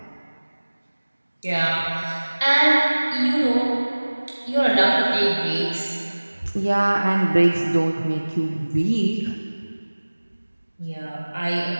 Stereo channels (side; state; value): both; inverted; correlation -1.00